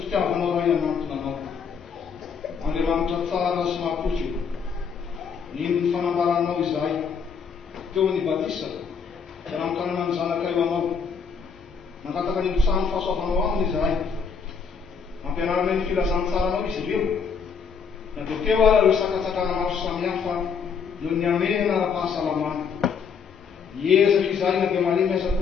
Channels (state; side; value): quieter; right; 6.1 dB